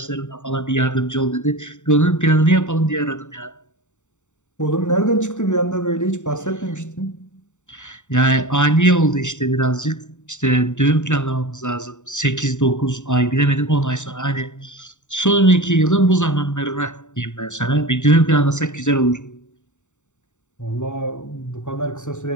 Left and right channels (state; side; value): late; right; 0.84 ms